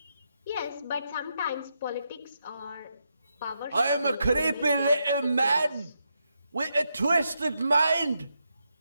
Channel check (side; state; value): both; inverted; correlation -0.83